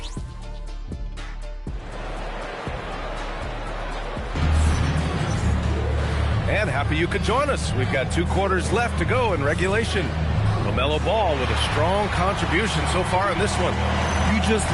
And happy you could join us. We've got 2 quarters left to go in regulation. LaMelo Ball with a strong contribution so far in this one. You just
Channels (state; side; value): identical; both; correlation 1.00